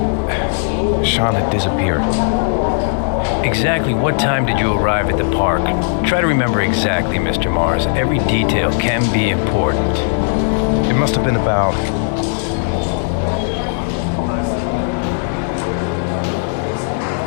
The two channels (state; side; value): silent; right; digital silence